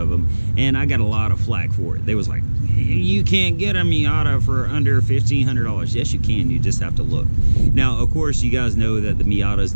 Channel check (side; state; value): both; inverted; correlation -1.00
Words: them. And I got a lot of flack for it. They was like, you can't get a Miata for under $1,500. Yes, you can. You just have to look. Now, of course, you guys know that the Miatas,